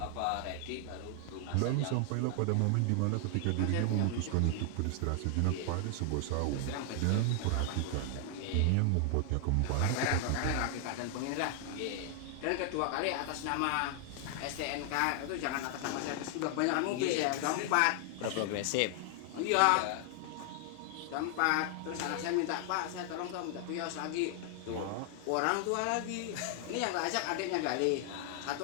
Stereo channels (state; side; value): different; both; correlation 0.00